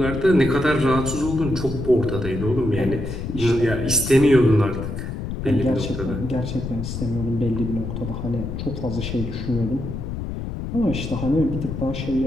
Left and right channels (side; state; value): left; noise; rumble, 6 dB below the sound